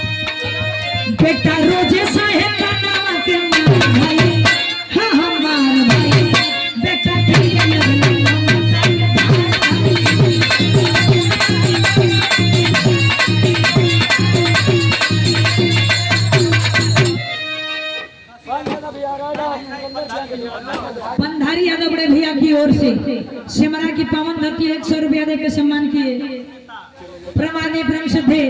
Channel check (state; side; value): identical; both; correlation 1.00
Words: बेटा रोजे साहेब का नाम के मार भाई हाँ हमार भाई बेटा पिए लगना ममता के पंधारी यादव बड़े भैया की ओर से सिमरा की पावन धरती 100 रुपया देकर सम्मान किए। प्रमाणी प्रेम श्रद्धे